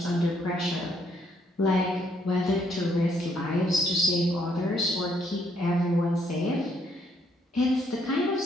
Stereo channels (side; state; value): both; normal; correlation 0.70